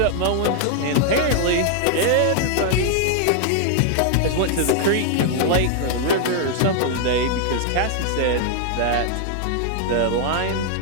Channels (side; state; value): both; different; correlation 0.00